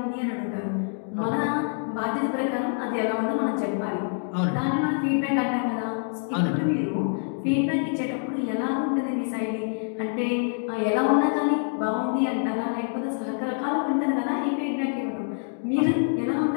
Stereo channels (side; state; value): right; silent; 59 dB below the other